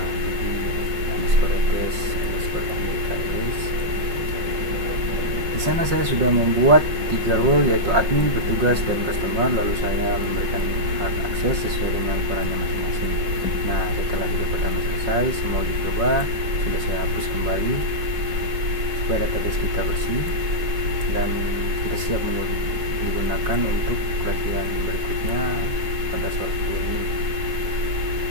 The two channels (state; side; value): late; left; 5.4 ms